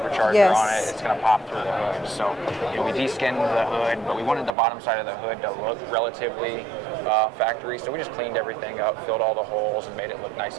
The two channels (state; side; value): drops out; left; at 4.5 s